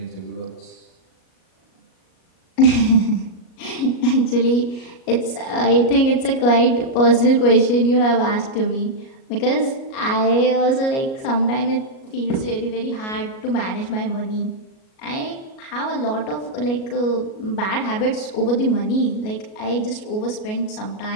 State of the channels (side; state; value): right; late; 37 ms